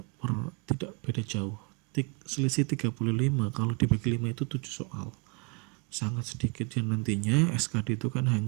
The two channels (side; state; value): left; quieter; 33.5 dB